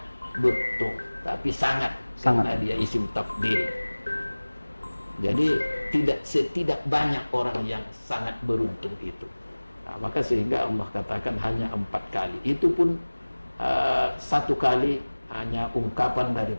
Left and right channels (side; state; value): both; inverted; correlation -1.00